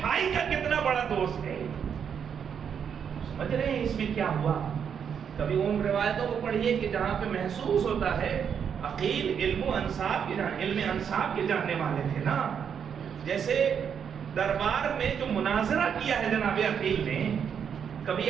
بھائی کا کتنا بڑا دوست ہے۔ سمجھ رہے ہیں اس میں کیا ہوا؟ کبھی ان روایتوں کو پڑھیے کہ جہاں پہ محسوس ہوتا ہے عقیل علم انصاف کے جاننے والے تھے نا، جیسے دربار میں جو مناظرہ کیا ہے جناب عقیل نے،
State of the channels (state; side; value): quieter; left; 7.6 dB